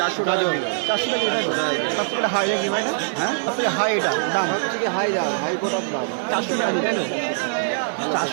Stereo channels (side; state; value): left; silent; digital silence